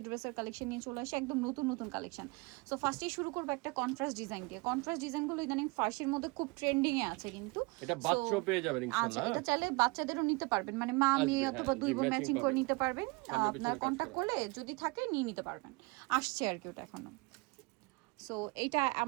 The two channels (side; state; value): left; quieter; 26.8 dB